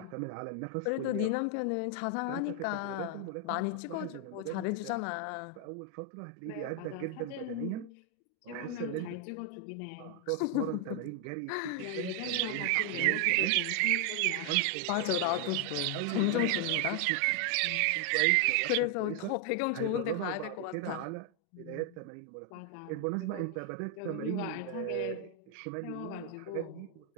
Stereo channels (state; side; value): different; both; correlation 0.00